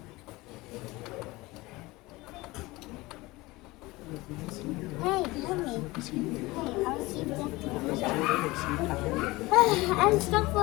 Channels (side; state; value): right; quieter; 21.2 dB